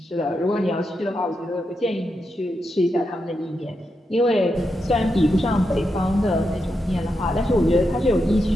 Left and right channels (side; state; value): both; normal; correlation 0.85